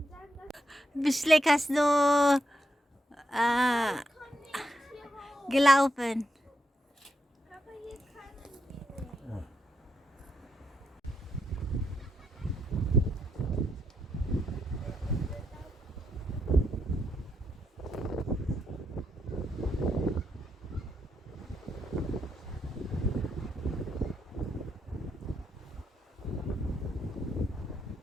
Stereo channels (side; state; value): both; normal; correlation 0.81